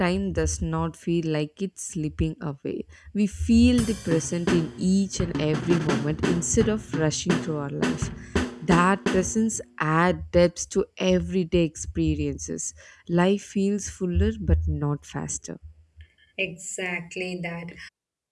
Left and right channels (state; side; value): identical; both; correlation 1.00